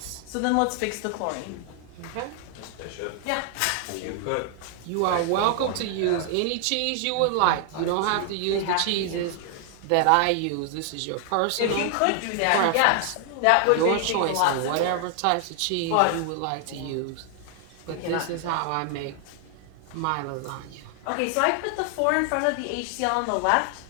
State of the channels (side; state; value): both; different; correlation 0.00